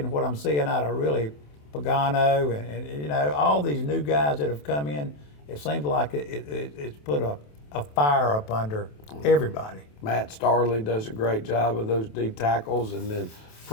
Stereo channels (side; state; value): right; late; 27 ms